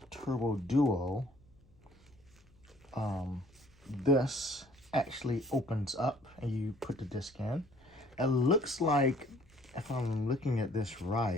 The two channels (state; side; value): noise; left; hum, 30 dB below the sound